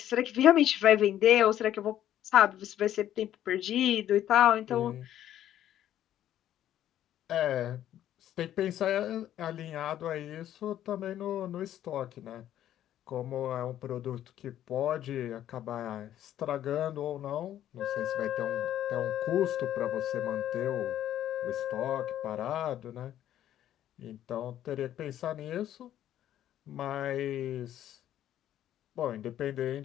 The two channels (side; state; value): right; quieter; 11.7 dB